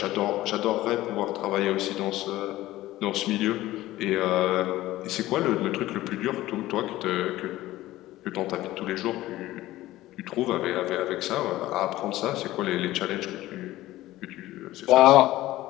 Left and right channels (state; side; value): quieter; right; 16.3 dB